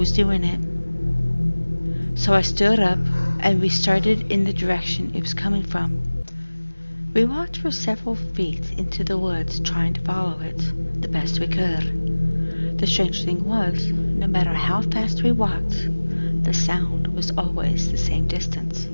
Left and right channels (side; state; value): both; inverted; correlation -1.00